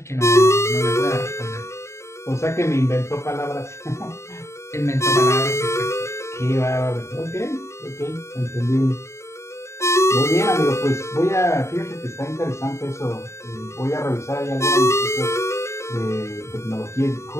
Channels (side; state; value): right; late; 0.14 ms